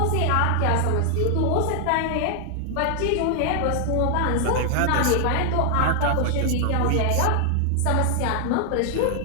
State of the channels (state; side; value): different; both; correlation 0.00